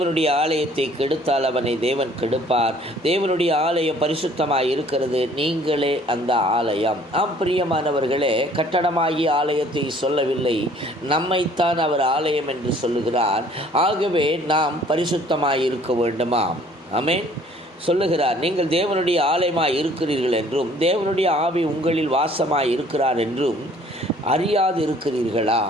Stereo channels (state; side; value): normal; both; correlation 0.56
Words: ஆலயத்தை கெடுத்தால் அவனை தேவன் கெடுப்பார். தேவனுடைய ஆலயம் பரிசுத்தமாய் இருக்கிறது, நீங்களே அந்த ஆலயம். பிரியமானவர்களே, கட்டடமாகிய ஆலயத்தை சொல்லவில்லை, நம்மைத்தான் அவர் ஆலயம் என்று சொல்லுகிறார். ஆகவே நாம் பரிசுத்தமாய் இருக்க வேண்டுமாம். ஆமென். சொல்லுகிறார், நீங்கள் தேவனுடைய ஆலயமாய் இருக்கிறீர்கள் என்றும் தேவனுடைய ஆவி உங்களில் வாசமாய் இருக்கிறார் என்றும் அறியாது இருக்கிறீர்களா?